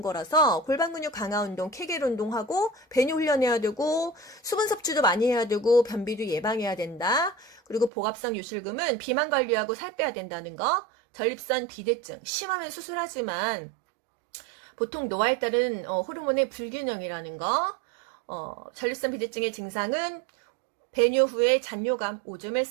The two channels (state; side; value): drops out; left; at 7.9 s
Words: 거라서 골반 근육 강화 운동, 케겔 운동하고 배뇨 훈련해야 되고 수분 섭취도 많이 해야 되고 변비도 예방해야 된다. 그리고 복압성 요실금은 비만 관리하고 살 빼야 된다는 거. 전립선 비대증 심하면 수술하지만 보통 노화에 따른 호르몬의 불균형이라는 거. 전립선 비대증의 증상은 배뇨 후에 잔뇨감, 오줌을